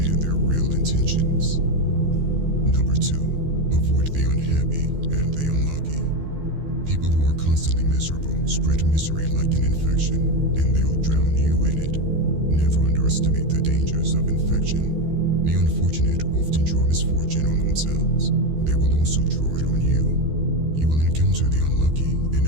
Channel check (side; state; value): left; late; 13 ms